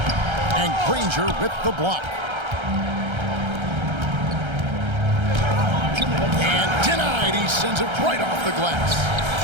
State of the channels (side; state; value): left; late; 1.3 ms